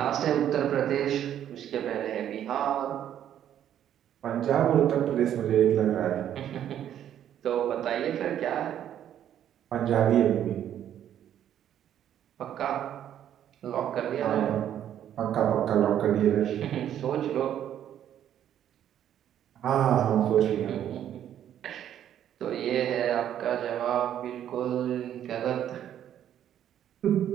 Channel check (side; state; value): left; quieter; 10.5 dB